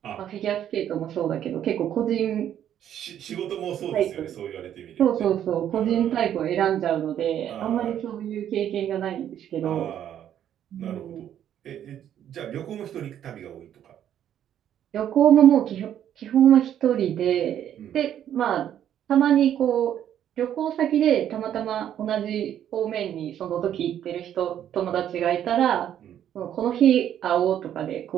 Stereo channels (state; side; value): quieter; left; 10.4 dB